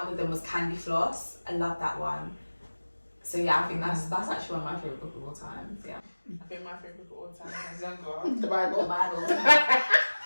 of them was Candy Floss. I love that one. So yeah, I think that's actually one of my favourite books of all time. Yeah. I think my favourite book of all time when I was younger. The The Bible. Bible.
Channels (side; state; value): both; inverted; correlation -1.00